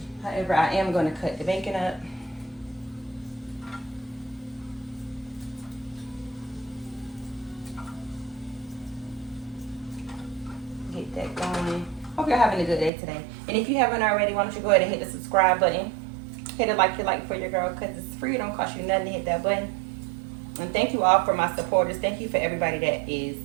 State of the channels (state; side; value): drops out; left; at 12.9 s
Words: However, I am gonna cut the bacon up. Get that going. Hope you're having a good day today. And if you haven't already, why don't you go ahead and hit the subscribe button. Hit it like you like for your girl, because it's free. It don't cost you nothing to hit that button. And thank you all for my supporters. Thank you for everybody that